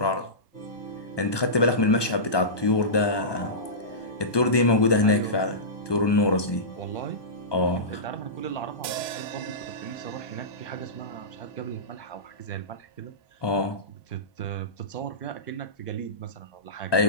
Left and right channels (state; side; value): late; right; 1.2 ms